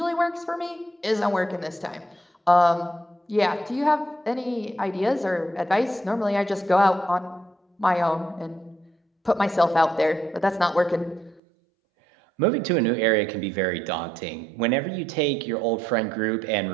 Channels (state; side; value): drops out; left; at 11.4 s